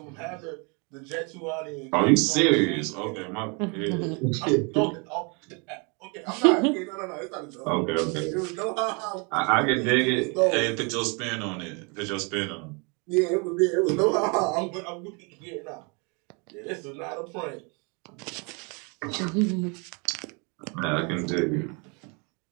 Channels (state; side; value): quieter; left; 32.9 dB